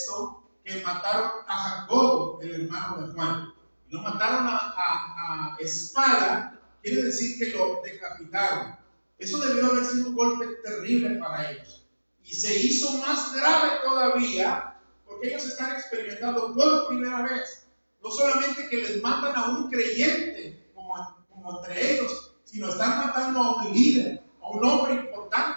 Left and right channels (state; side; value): inverted; both; correlation -1.00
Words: que mataron a Jacobo, el hermano de Juan. Y lo mataron a espada. Quiere decir que lo decapitaron. Eso debió haber sido un golpe terrible para ellos. Y se hizo más grave todavía porque ellos están experimentando por primera vez, no solamente que les matan a un creyente como entre ellos, sino están matando a un líder, a a un hombre